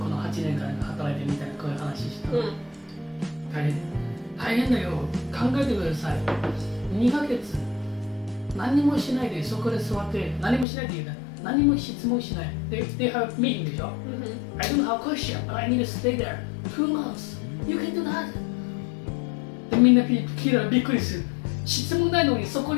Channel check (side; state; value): right; drops out; at 10.7 s